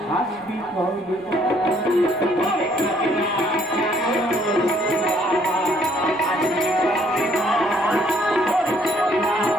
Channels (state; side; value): noise; right; rumble, 28 dB below the sound